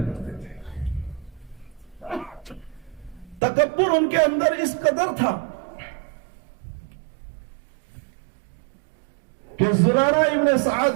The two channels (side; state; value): left; drops out; at 3.4 s